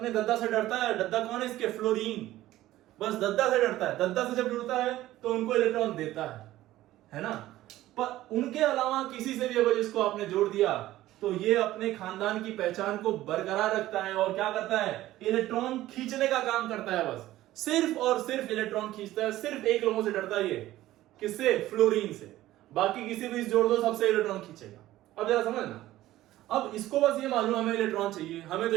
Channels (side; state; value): left; quieter; 15.2 dB